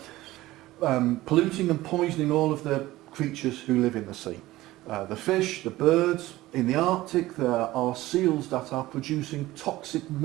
polluting and poisoning all of the creatures who live in the sea. The fish, the birds. In the Arctic there are seals that are producing toxic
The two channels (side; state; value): left; quieter; 17.2 dB